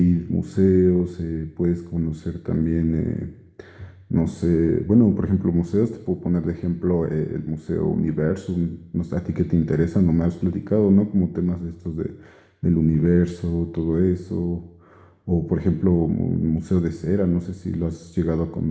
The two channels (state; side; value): identical; both; correlation 1.00